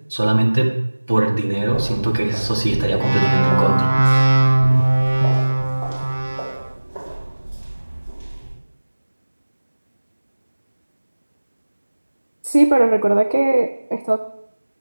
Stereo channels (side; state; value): both; inverted; correlation -1.00